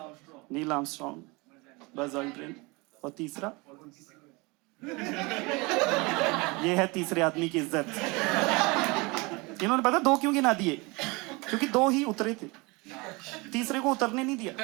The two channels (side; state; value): left; quieter; 26.0 dB